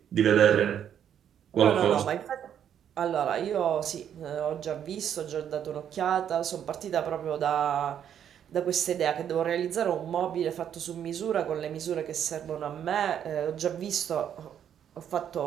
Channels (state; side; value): quieter; left; 9.3 dB